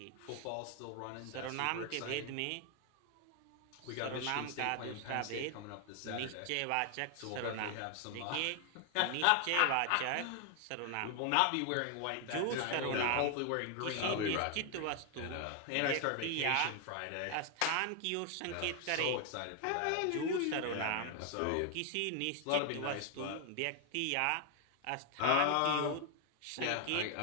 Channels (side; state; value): both; different; correlation 0.00